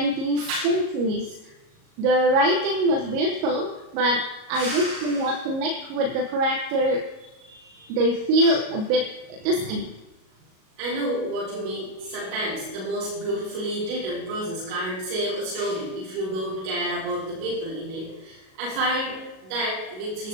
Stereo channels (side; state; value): left; late; 37 ms